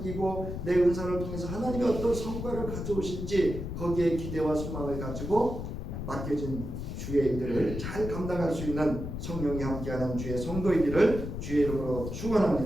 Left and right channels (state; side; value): noise; left; rumble, 6 dB below the sound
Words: 내 은사를 통해서 하나님이 어떤 성과를 가져오실지 거기에 기대와 소망을 가지고 맡겨진 주의 일들을 잘 감당할 수 있는 성령이 함께하는 주의 성도이기를 주의 이름으로